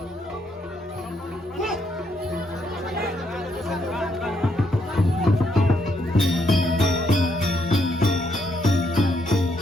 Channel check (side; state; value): both; normal; correlation 0.75